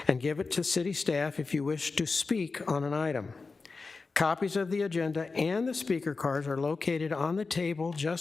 and give it to city staff if you wish to speak on an item. Copies of the agenda and the speaker cards are located on the table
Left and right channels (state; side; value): quieter; right; 4.2 dB